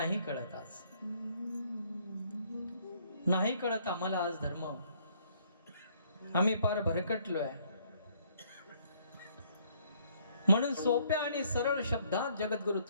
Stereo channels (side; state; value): both; inverted; correlation -0.65